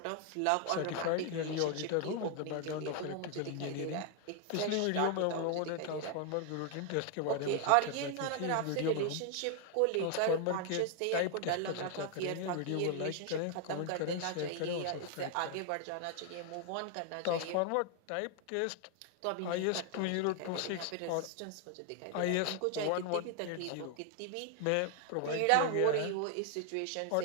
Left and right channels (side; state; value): both; different; correlation 0.00